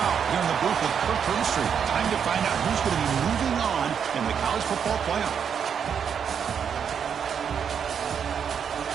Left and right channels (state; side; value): quieter; left; 7.5 dB